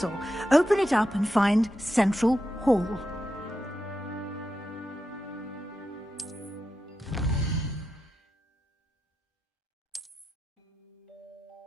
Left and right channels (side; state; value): both; normal; correlation 0.88